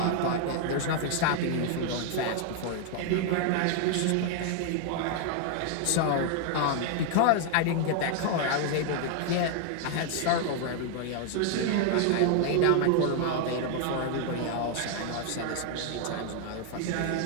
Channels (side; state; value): both; different; correlation 0.00